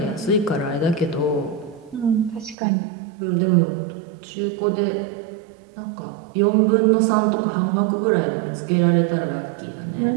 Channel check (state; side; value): drops out; left; at 2.6 s